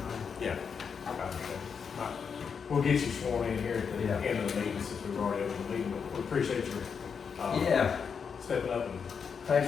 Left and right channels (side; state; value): right; quieter; 6.3 dB